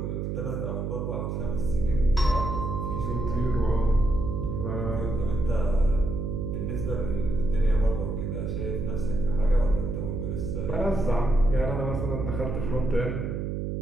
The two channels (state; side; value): noise; right; hum, 3 dB below the sound